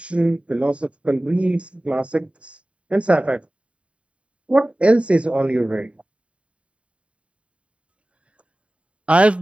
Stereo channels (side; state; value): left; late; 0.062 ms